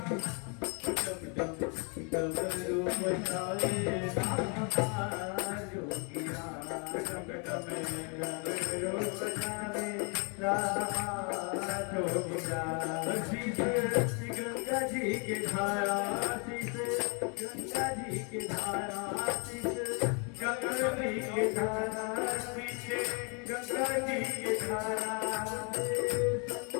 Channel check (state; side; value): quieter; right; 36.4 dB